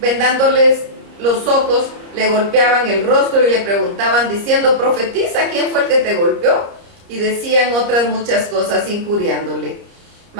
los ojos, le golpeaban el rostro y le preguntaban diciendo: profetiza, ¿quién fue el que te golpeó? Y decían otras muchas cosas injuriándole.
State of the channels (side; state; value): left; late; 30 ms